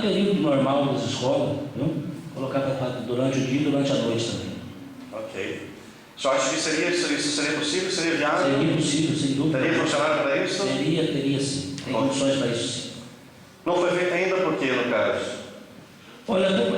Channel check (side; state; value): both; identical; correlation 1.00